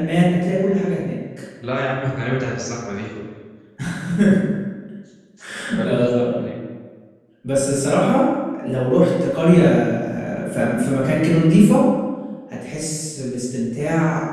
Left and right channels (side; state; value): both; identical; correlation 1.00